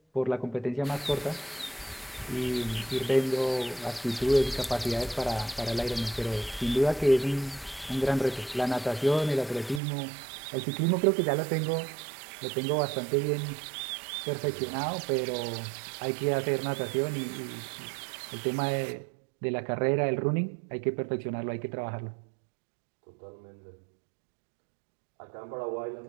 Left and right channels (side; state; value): left; drops out; at 9.8 s